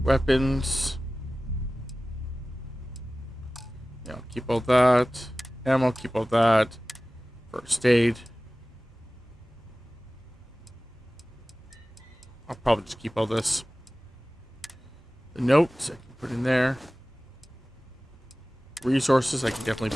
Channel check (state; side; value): normal; both; correlation 0.97